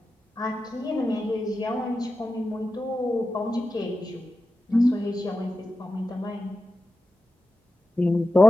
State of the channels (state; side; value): normal; both; correlation 0.92